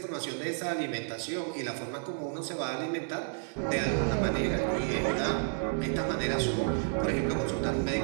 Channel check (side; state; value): left; silent; 57 dB below the other